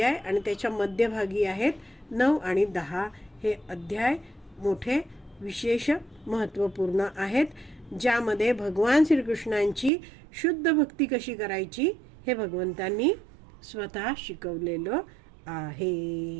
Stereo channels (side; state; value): left; drops out; at 9.9 s